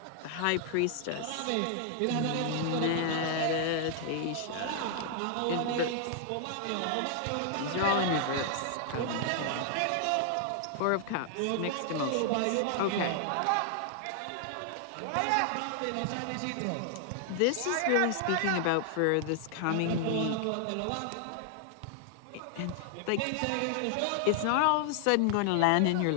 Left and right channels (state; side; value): different; both; correlation 0.00